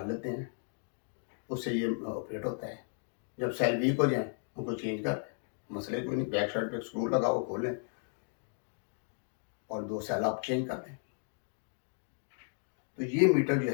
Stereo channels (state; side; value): silent; right; 55 dB below the other